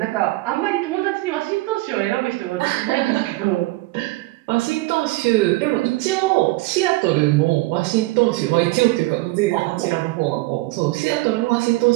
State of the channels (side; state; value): left; quieter; 20.5 dB